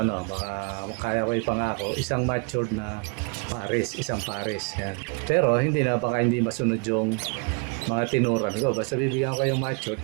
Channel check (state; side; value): quieter; left; 35.4 dB